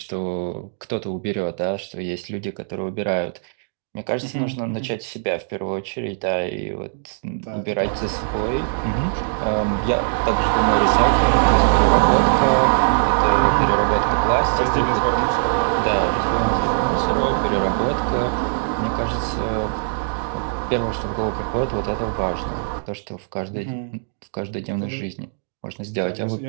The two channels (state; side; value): silent; left; digital silence